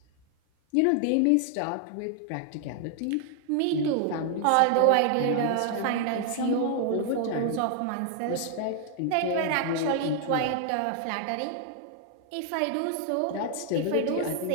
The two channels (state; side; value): different; both; correlation 0.00